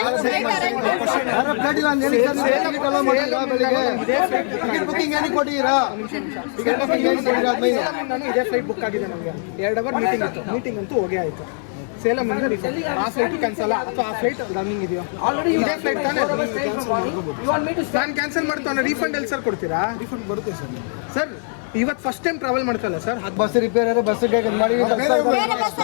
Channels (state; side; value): silent; right; 55 dB below the other